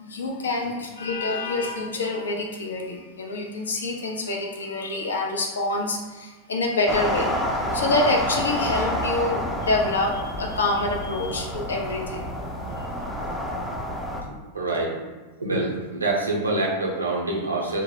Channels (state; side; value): normal; both; correlation -0.11